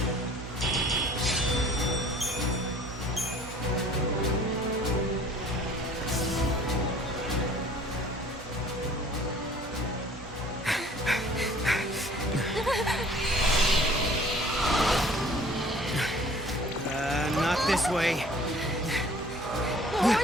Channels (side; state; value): both; normal; correlation 0.51